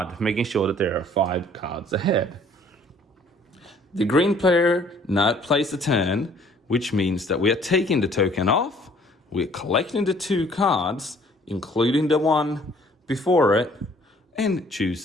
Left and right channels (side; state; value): both; normal; correlation 0.57